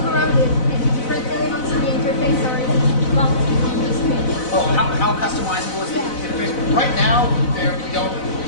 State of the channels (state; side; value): late; right; 4.0 ms